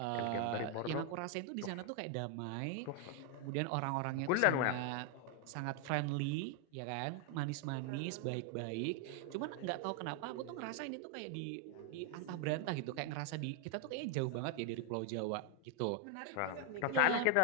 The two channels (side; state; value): both; different; correlation 0.00